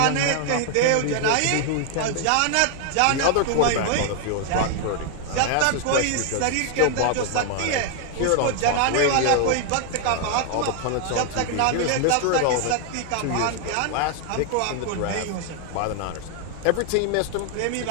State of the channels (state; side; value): different; both; correlation 0.00